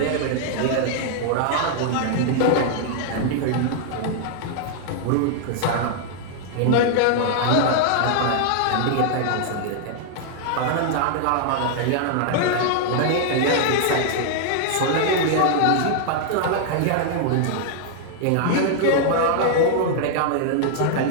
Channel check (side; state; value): both; different; correlation -0.01